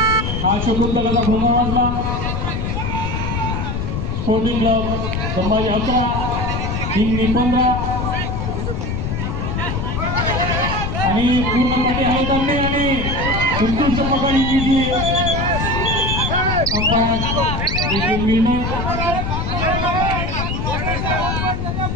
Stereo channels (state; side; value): noise; left; rumble, 2 dB below the sound